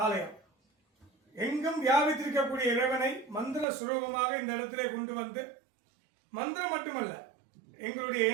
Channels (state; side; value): drops out; left; at 3.7 s